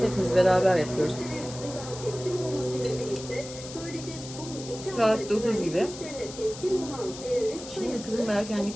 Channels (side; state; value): left; noise; hiss, 13 dB below the sound